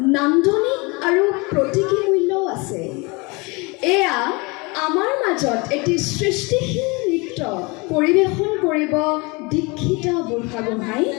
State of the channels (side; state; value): right; quieter; 27.4 dB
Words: নান্দনিক আৰু প্ৰতীকী মূল্যও আছে। এয়া আমাৰ মাজত এটি সৃষ্টিশীল নৃত্য পৰিৱেশন কৰিব দীক্ষিতা বুঢ়াগোহাঁই